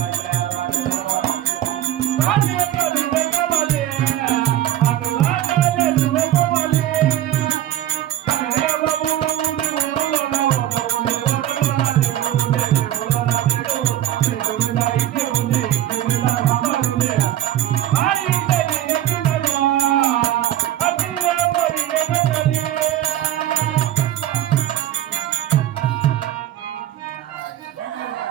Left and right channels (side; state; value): left; quieter; 12.7 dB